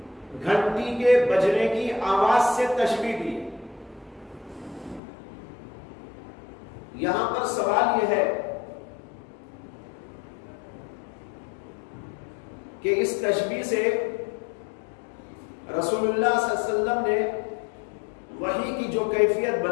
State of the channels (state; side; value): drops out; right; at 5.0 s